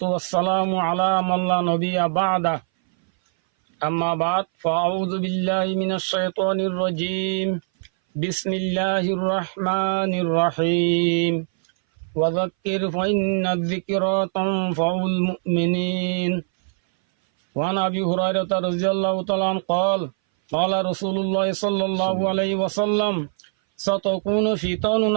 والسلام على من لا نبي بعده أما بعد فأعوذ بالله من الشيطان الرجيم بسم الله الرحمن الرحيم وذكر فإن الذكرى تنفع المؤمنين وعن أبي هريرة رضي الله تعالى عنه قال رسول الله صلى الله عليه وسلم ستكون فتن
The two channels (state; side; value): silent; left; 61 dB below the other